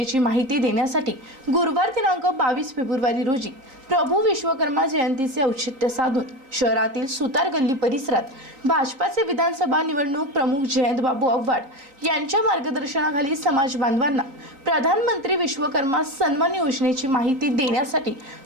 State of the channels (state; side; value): late; left; 3.8 ms